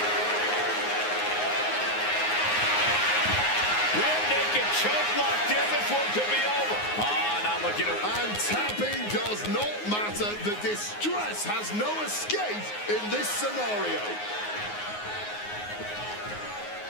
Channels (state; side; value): late; right; 9.6 ms